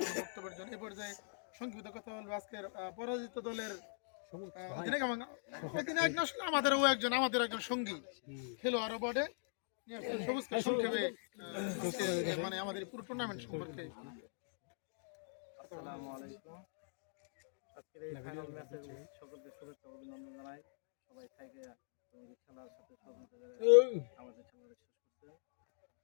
বক্তব্যের জন্য। এ পর্যায়ে সংক্ষিপ্ত কথা বলবো আজকের পরাজিত দলের আমাদের একজন সঙ্গী খেলোয়াড় বটে। সবুজকে সংক্ষেপে মানে আমাদের পুরো টুর্নামেন্ট সম্পর্কে। আসসালামু আলাইকুম। আজকের এই ফাইনাল ম্যাচে সকলকে শুভেচ্ছা অভিনন্দন জানাই। সবাই থাকে খেলার সাথে আমাদের খেলাটা শেষ করতে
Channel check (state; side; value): silent; right; digital silence